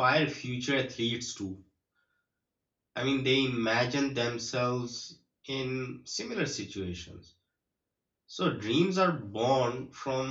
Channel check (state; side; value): identical; both; correlation 1.00